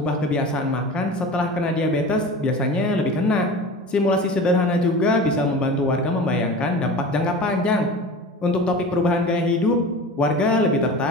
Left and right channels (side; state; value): both; normal; correlation 0.34